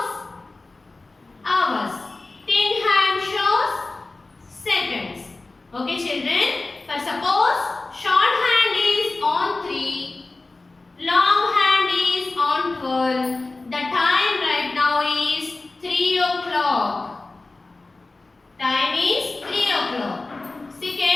hours. Thin hand shows seconds. Okay, children. For suppose short hand is on 3, long hand is on 12. The time right now is 3 o'clock. Time is 3 o'clock. See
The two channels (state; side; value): quieter; right; 3.3 dB